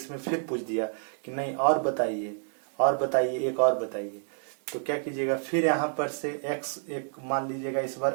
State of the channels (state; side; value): silent; left; digital silence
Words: फिर पूछ दिया कि नहीं और बताइए, और बताइए, एक और बताइए, तो क्या कीजिएगा, फिर यहाँ पर से x एक मान लीजिएगा, इस